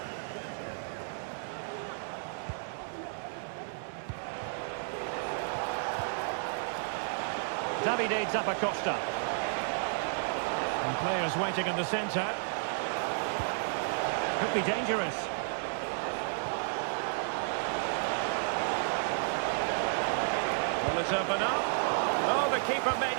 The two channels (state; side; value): silent; left; 56 dB below the other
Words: Davide Zappacosta. And players waiting in the centre. Could be dangerous. Will it open up? Oh, the keeper made